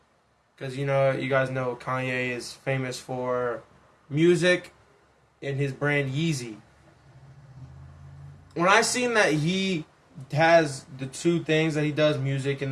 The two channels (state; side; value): identical; both; correlation 1.00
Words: Because you guys know Kanye is famous for music and his brand Yeezy. When I seen that he has the 2 things that he does, music